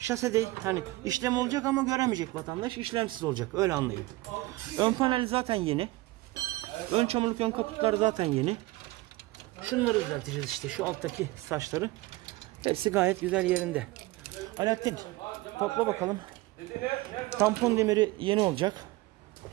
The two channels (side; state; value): left; quieter; 19.9 dB